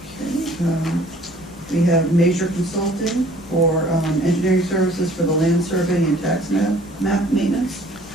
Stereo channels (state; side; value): normal; both; correlation 0.54